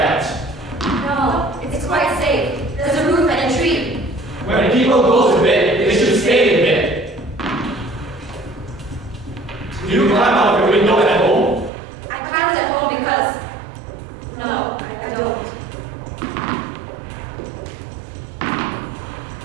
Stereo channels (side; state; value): left; drops out; at 11.7 s